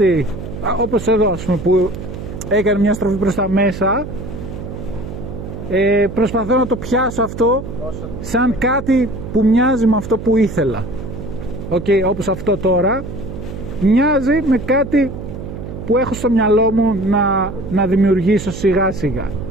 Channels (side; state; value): right; noise; hum, 9 dB below the sound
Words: όπως εδώ ας πούμε που έκανε μια στροφή προς τα μέσα, προσπαθώ να το πιάσω αυτό σαν κάτι που μοιάζει με αυτό που ήθελα. Όπως αυτό τώρα μοιάζει με κάτι που έχω στο μυαλό μου να δημιουργήσω σιγά σιγά.